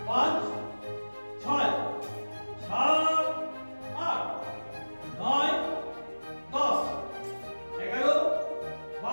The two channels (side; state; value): both; inverted; correlation -1.00